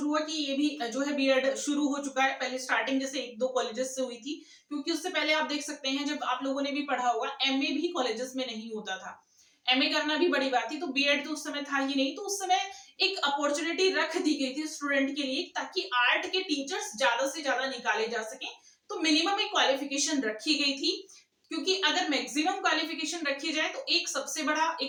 हुआ कि ये भी जो है बीएड शुरू हो चुका है, पहले स्टार्टिंग जैसे एक दो कॉलेजेस से हुई थी, क्योंकि उससे पहले आप देख सकते हैं जब आप लोगों ने भी पढ़ा होगा एमए भी कॉलेजेस में नहीं होता था, एमए करना भी बड़ी बात थी, तो बीएड तो उस समय था ही नहीं, तो उस समय एक अपॉर्चुनिटी रख दी गई थी स्टूडेंट के लिए ताकि आर्ट के टीचर्स ज्यादा से ज्यादा निकाले जा सके, तो मिनिमम एक क्वालिफिकेशन रखी गई थी, क्योंकि अगर मैक्सिमम क्वालिफिकेशन रखी जाए तो एक सबसे बड़ा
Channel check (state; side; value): identical; both; correlation 1.00